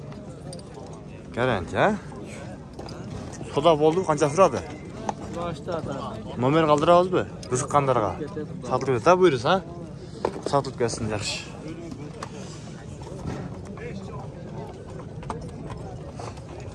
Garanti ha? Soda bo'ldi, qancha turadi? Başta da. Nomer qoldirabizmi? Qiziqqanlarga. Sotib keta buyursa, ha? Sotib kelsin yaxshi.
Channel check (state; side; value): identical; both; correlation 1.00